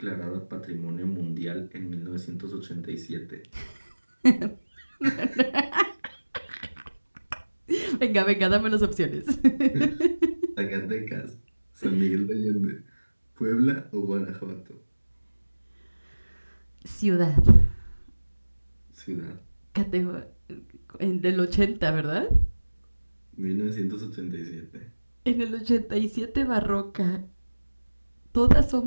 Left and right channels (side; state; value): both; inverted; correlation -1.00